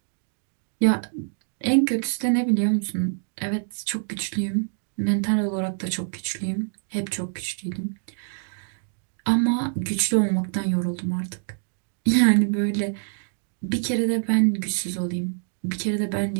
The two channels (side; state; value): left; silent; digital silence